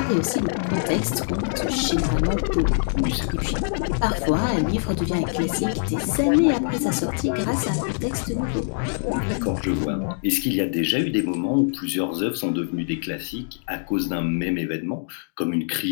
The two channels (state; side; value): silent; right; digital silence